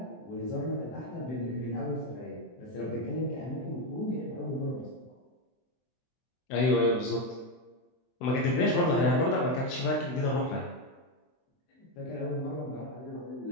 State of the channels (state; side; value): late; right; 23 ms